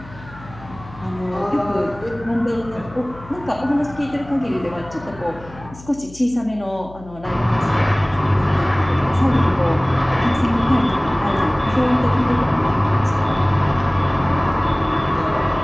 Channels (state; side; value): noise; left; hum, 19 dB below the sound